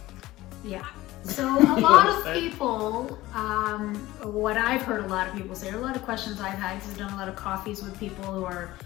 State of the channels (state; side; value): quieter; right; 17.4 dB